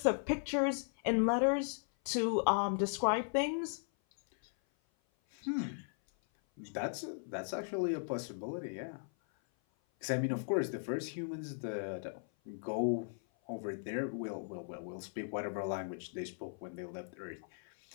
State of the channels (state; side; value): silent; right; 53 dB below the other